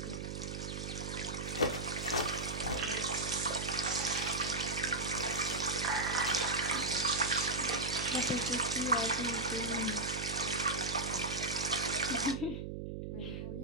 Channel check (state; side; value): noise; right; hum, 6 dB below the sound